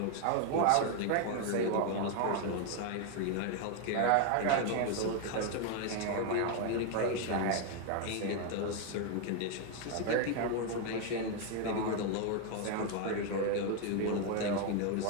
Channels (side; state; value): both; different; correlation 0.01